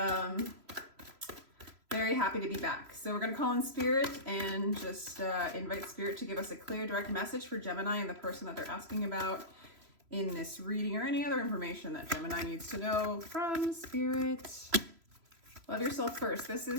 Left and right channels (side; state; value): left; late; 3.0 ms